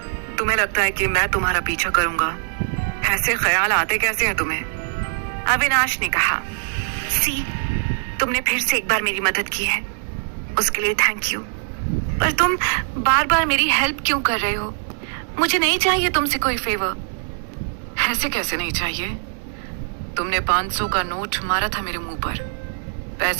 तुम्हें लगता है कि मैं तुम्हारा पीछा करूंगा? ऐसे ख्याल आते कैसे हैं तुम्हें? अविनाश ने कहा। सी, तुमने फिर से एक बार मेरी मदद की है, उसके लिए थैंक यू। पर तुम बार बार मेरी हेल्प क्यों कर रहे हो? मुझे नहीं चाहिए तुमसे कोई फेवर। ऐसे कैसे नहीं चाहिए? तुमने 500 का नोट मारा था मेरे मुंह पर,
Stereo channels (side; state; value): left; silent; 64 dB below the other